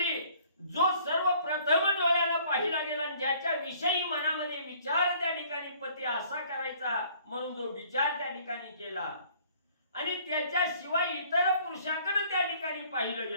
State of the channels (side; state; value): both; inverted; correlation -0.57